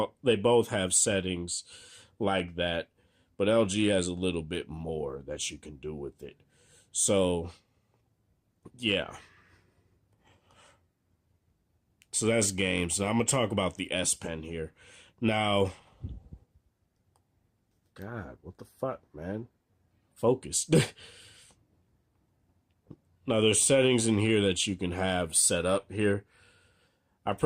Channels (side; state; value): both; identical; correlation 1.00